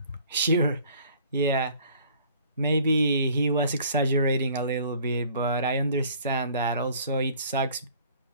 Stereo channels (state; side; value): inverted; both; correlation -0.54